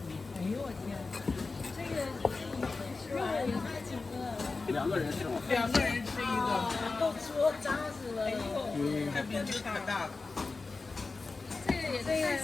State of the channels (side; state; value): right; quieter; 3.9 dB